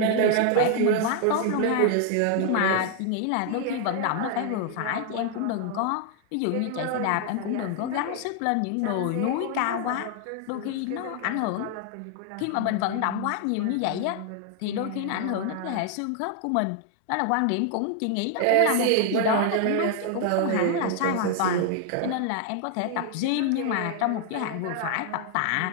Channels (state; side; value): different; both; correlation 0.00